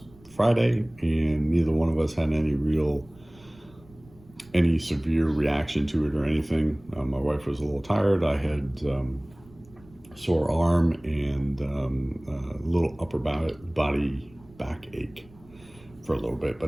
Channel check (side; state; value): right; noise; rumble, 25 dB below the sound